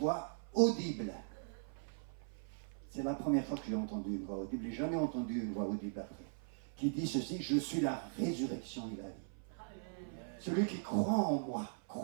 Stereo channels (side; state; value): left; silent; 51 dB below the other